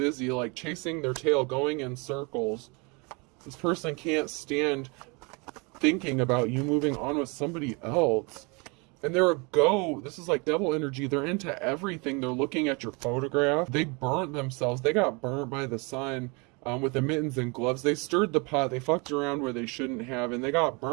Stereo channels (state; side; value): quieter; left; 29.9 dB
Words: like chasing their tail, going in circles. This person can't stand thinking about you moving on with somebody else. And they're a go. This is like devil energy. They're into everything. They're looking at your photograph. They burnt themselves. They got burnt by the sun with the mittens and gloves. They stirred the pot. They fucked around where they shouldn't have, and they got